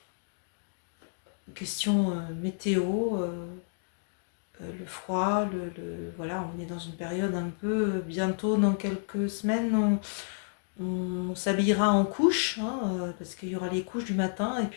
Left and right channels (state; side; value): silent; right; digital silence